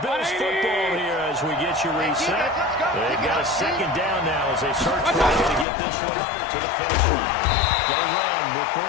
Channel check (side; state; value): right; drops out; at 5.7 s